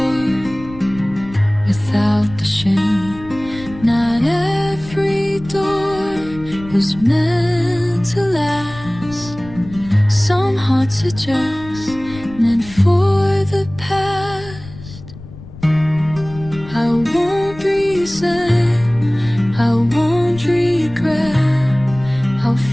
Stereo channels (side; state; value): left; noise; rumble, 16 dB below the sound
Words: without the shame. Not every door was meant to last. Some hearts are just meant for the past. I won't